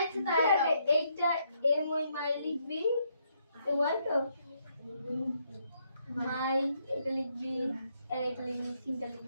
তাই এইটা এম ওই মাই লিখবি, ওয়াল তো মাই এটা লিখবি, আর এটা লিখবি, তিনটা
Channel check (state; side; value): inverted; both; correlation -0.74